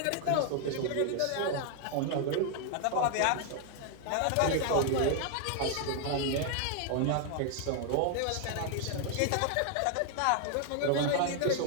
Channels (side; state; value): both; different; correlation 0.00